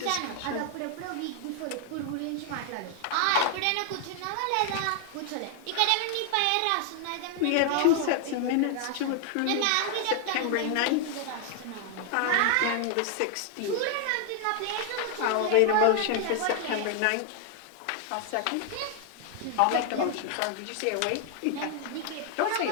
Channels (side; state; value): both; different; correlation 0.00